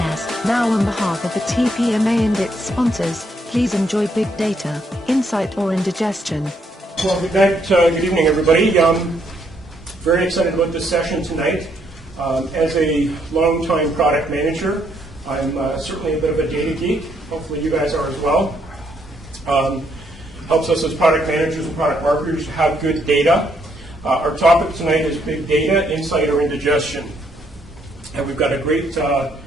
Now on behalf of the TPMA and its sponsors, please enjoy big data, insight or indigestion. Well, good night, good evening everybody. Very excited about this session tonight. As a long-time product manager, I'm certainly a bit of a data geek. Hopefully you guys are as well. Helps us as product managers and product marketers to have good data. Our topic tonight is big data, insight or indigestion. And we've got a great set of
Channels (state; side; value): normal; both; correlation 0.72